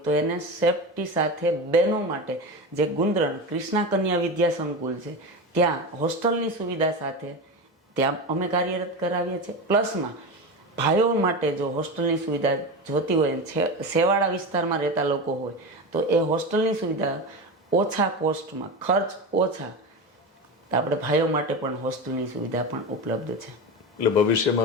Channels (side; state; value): both; normal; correlation 0.22